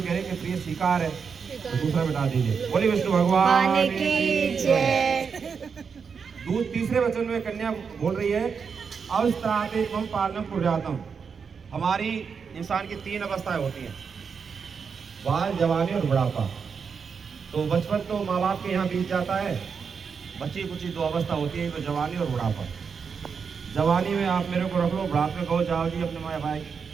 कह रहे हैं कि प्रिय स्वीकार है, तो दूसरा मिटा दीजिए। बोली विष्णु भगवान की जय। तीसरे वचन में कन्या बोल रही है अवस्थाते मम पालनम कुर्यातम, हमारी इंसान की 3 अवस्थाएं होती हैं, बाल, जवानी और बुढ़ापा। तो बचपन तो माँ बाप के यहाँ बीत जाता है, बच्ची कुची 2 अवस्था होती है, तो जवानी और बुढ़ापा। जवानी में आप मेरे को रख लो, बुढ़ापे में कहो जाओ जी अपने माँ भाई।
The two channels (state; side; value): quieter; left; 6.0 dB